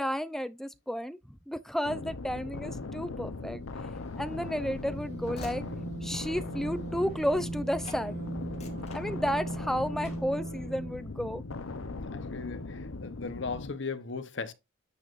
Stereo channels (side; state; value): both; normal; correlation 0.80